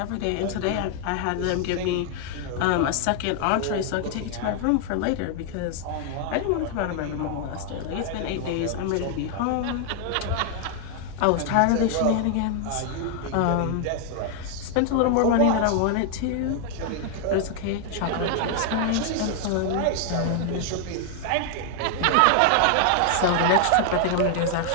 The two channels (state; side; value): different; both; correlation 0.00